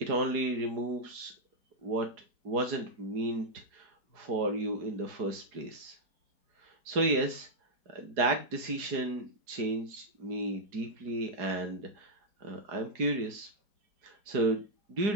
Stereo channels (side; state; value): left; late; 4.8 ms